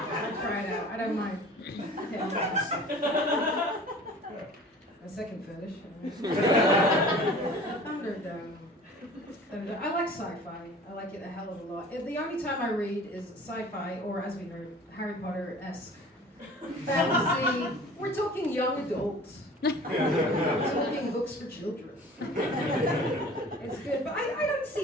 try it out. I don't mind. Okay. A second fetish. I like sci-fi. I like it a hell of a lot. The only time I read is sci-fi, or as we heard, Harry Potter-esque fantasy. We're talking young adults. We're talking books for children. It's good, but I don't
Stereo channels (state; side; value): normal; both; correlation 0.44